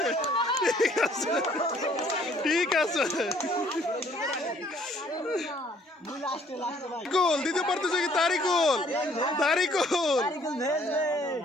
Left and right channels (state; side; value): normal; both; correlation 0.61